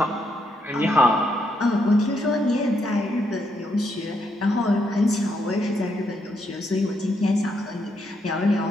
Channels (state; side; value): normal; both; correlation 0.77